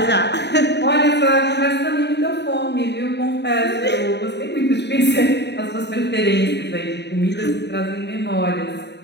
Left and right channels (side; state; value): right; late; 0.50 ms